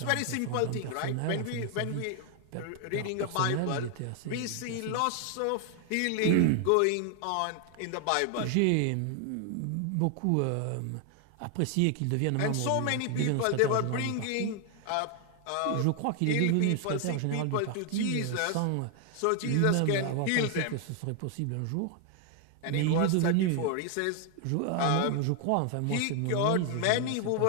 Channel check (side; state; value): both; different; correlation 0.00